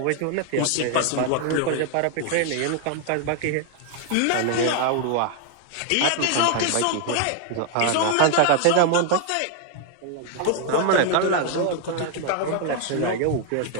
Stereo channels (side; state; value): both; different; correlation 0.00